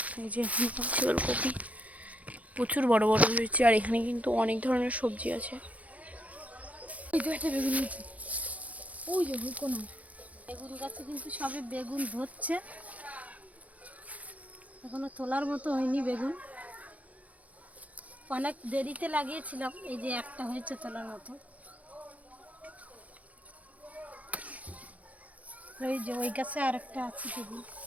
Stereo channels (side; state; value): left; late; 0.070 ms